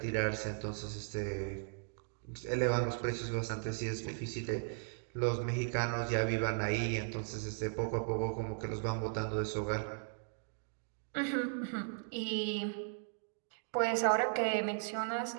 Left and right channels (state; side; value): silent; left; digital silence